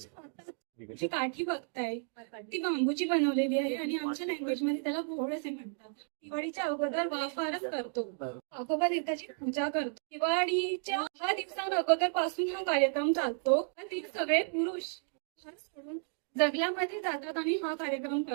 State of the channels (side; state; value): left; silent; 56 dB below the other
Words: जी काठी बघताय ती बांबूची बनवलेली आहे आणि आमच्या लँग्वेज मध्ये त्याला घोळ असे म्हणतात. दिवाळीच्या अगोदर वाफारच करतो. आगोबा देवताची पूजा करतो. दिवाळीच्या 6 दिवसां अगोदर पासून हा कार्यक्रम चालतो. ती सगळे पुरुष घर सोडून जंगलामध्ये जातात आणि हा कार्यक्रम